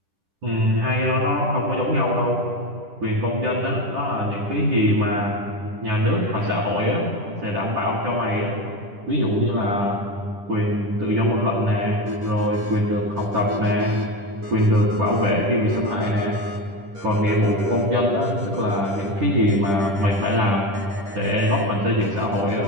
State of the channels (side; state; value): left; late; 10 ms